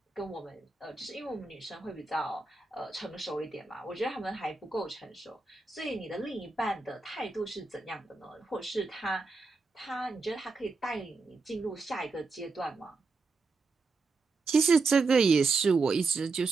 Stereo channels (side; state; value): left; quieter; 4.0 dB